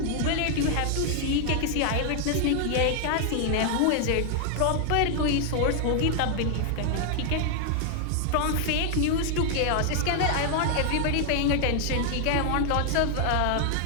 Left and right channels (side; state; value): both; different; correlation 0.00